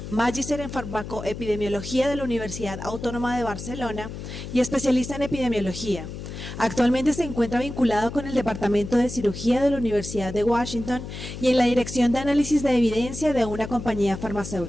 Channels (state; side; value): noise; left; hum, 9 dB below the sound